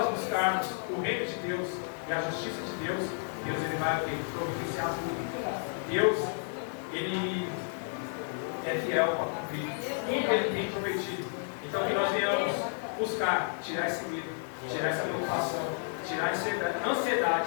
buscarmos o reino de Deus e a justiça de Deus, Deus, Ele vai providenciar tudo. Deus, Ele é fiel para cumprir tudo que Ele tem prometido. Então que nós venhamos buscar tirar esse medo, tirar essa preocupação, tirar essa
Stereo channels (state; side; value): silent; right; 57 dB below the other